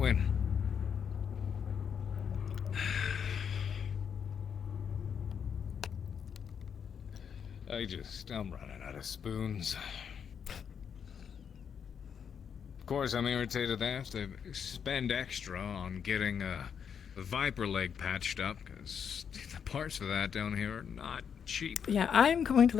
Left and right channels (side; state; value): right; quieter; 7.4 dB